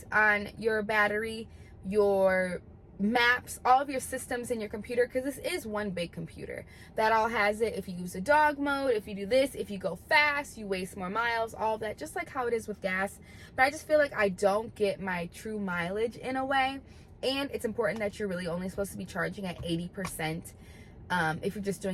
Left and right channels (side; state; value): both; identical; correlation 1.00